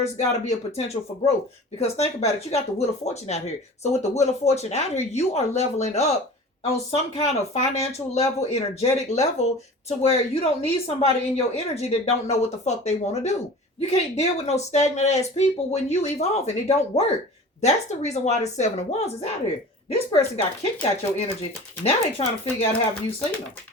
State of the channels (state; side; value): normal; both; correlation 0.39